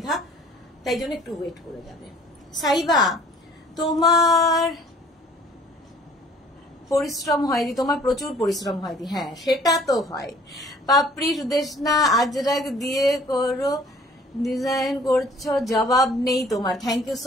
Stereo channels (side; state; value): both; normal; correlation 0.54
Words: তাই জন্য একটু ওয়েট করে যাবে। সাইবা, তোমার পরিশ্রম হয়নি, তোমার প্রচুর পরিশ্রম হয়নি, হ্যাঁ সেটা তো হয়। পাপড়ি সুদেশনা আজরাক দিয়ে করো ডিজাইন করছো, জবাব নেই তোমার। Thank you